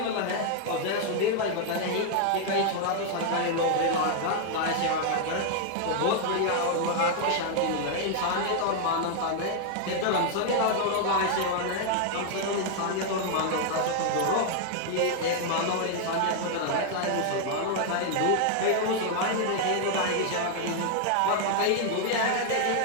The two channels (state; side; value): different; both; correlation 0.00